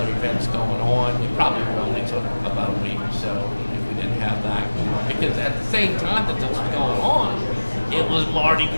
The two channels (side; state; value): both; inverted; correlation -1.00